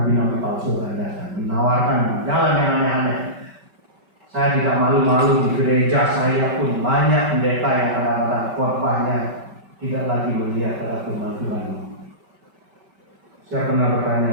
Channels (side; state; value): left; late; 5.2 ms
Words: palsu yang datang menawarkan jalan yang aneh-aneh. Saya tidak malu-malu di gereja saya pun banyak pendeta yang kadang-kadang khotbahnya tidak lagi melihat pada firman Tuhan. Saya pernah